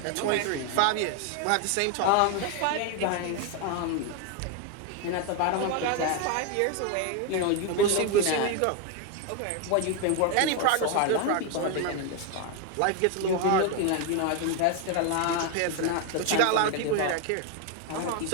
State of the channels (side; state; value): both; different; correlation 0.01